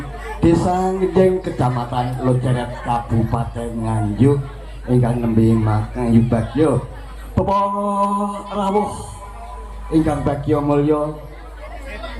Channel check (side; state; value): both; identical; correlation 1.00